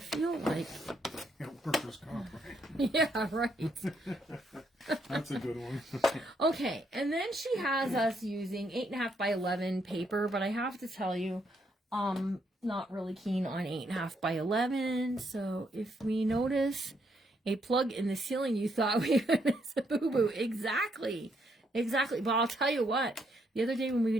like, Yeah, workers' comp, right? yeah, right. That's a good one. Okay, and then she has us using 8.5 by 11 paper, but I have to tell you, not really keen on 8.5 by 11. So if we notice a plug in the ceiling, you thought we would miss a boo-boo. Exactly. But I'll tell you what, the other day when we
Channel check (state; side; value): normal; both; correlation 0.74